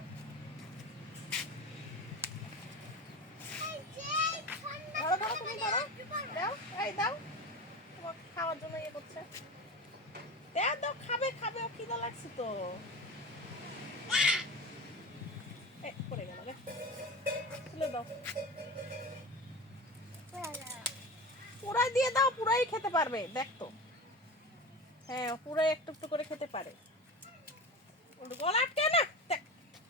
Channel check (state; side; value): normal; both; correlation 0.29